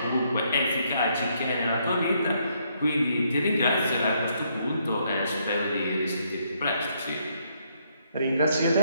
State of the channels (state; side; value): inverted; both; correlation -0.72